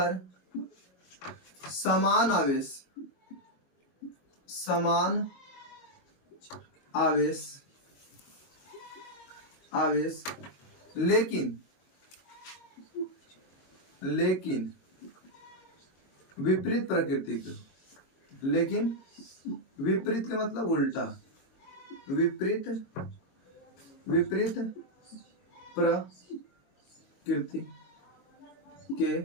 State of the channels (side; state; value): right; late; 22 ms